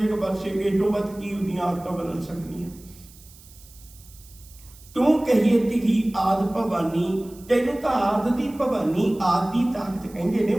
बस ये तो बद की उदियां आदतां बदल सकती। तू कहिए तिही आद भवानी, तेनू तो आद दी भवानी आद दी ताकत कहंदे ने,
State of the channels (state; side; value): noise; right; hiss, 23 dB below the sound